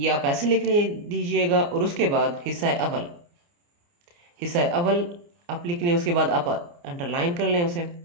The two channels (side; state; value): left; late; 29 ms